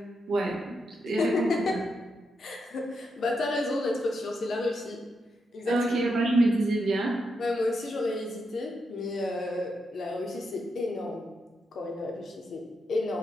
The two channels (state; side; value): normal; both; correlation 0.83